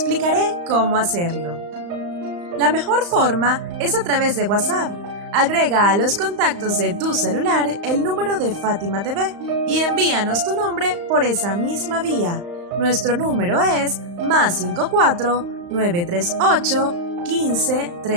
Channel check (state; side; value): late; left; 35 ms